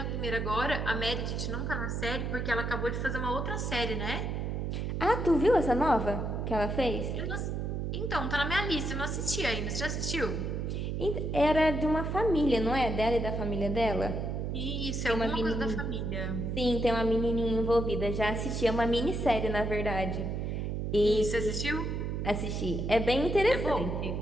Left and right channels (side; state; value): right; noise; hum, 2 dB below the sound